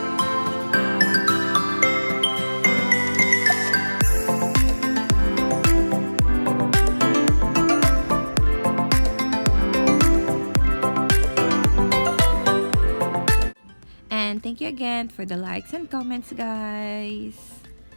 Thank you again for the likes and comments, guys.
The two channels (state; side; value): inverted; both; correlation -1.00